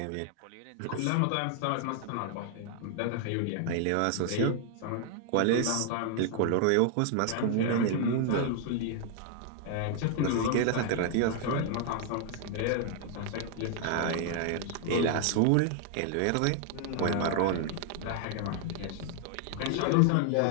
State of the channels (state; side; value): different; both; correlation 0.00